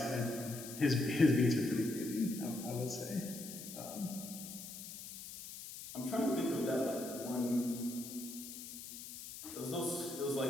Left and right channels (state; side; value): noise; left; hiss, 11 dB below the sound